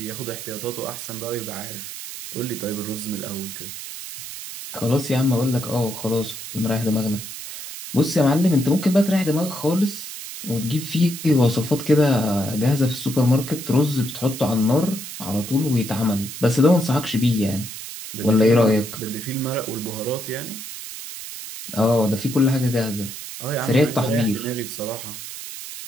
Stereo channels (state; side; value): noise; right; hiss, 10 dB below the sound